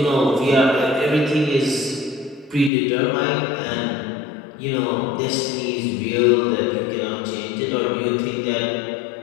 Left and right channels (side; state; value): right; drops out; at 2.7 s